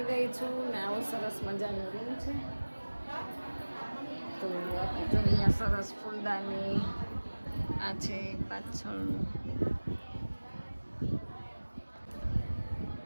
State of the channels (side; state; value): both; inverted; correlation -1.00